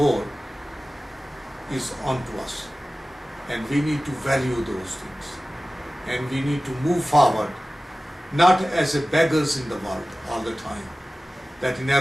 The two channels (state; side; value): normal; both; correlation 0.97